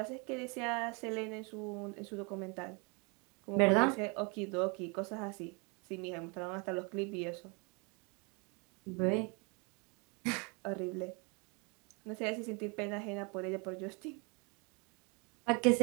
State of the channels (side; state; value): left; quieter; 31.7 dB